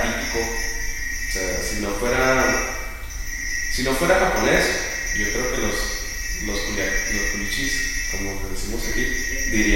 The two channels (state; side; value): identical; both; correlation 1.00